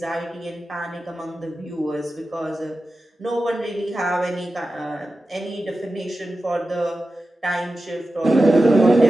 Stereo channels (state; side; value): normal; both; correlation 0.93